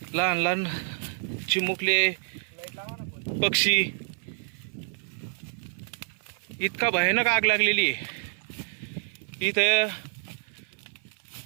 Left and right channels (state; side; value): silent; left; 57 dB below the other